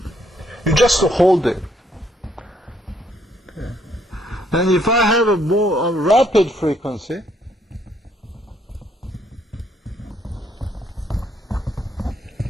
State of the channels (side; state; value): both; normal; correlation 0.69